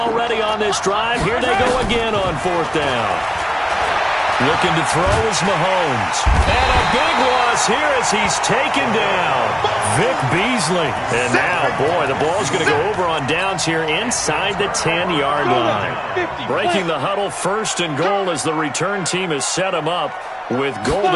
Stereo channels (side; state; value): both; identical; correlation 1.00